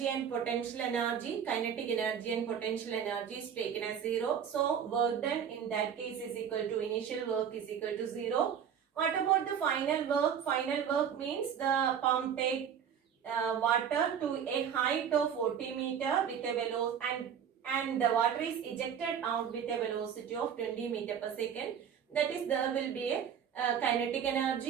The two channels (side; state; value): left; quieter; 8.1 dB